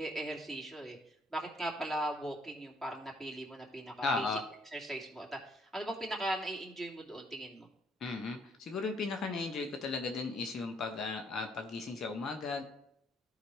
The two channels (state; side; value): normal; both; correlation 0.67